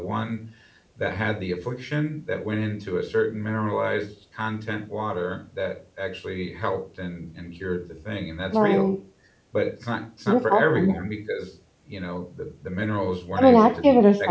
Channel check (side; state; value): both; identical; correlation 1.00